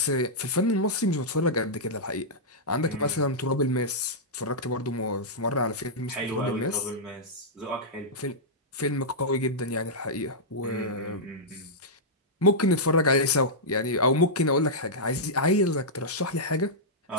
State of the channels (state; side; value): normal; both; correlation -0.10